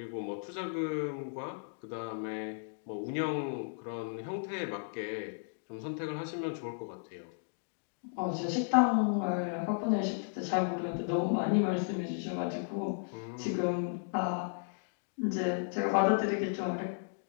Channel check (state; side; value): silent; right; digital silence